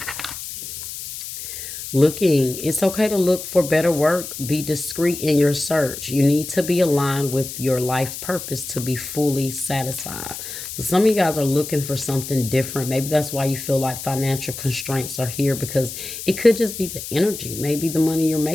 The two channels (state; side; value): noise; left; hiss, 9 dB below the sound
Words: Looking, it's okay to look for better work. Be discreet in your search. You need to be aligned with your life purpose to be fully satisfied. So some of you guys are looking for something different. Maybe that's why you feel like financial constraints are here, because it could just be the energy. Maybe the money you're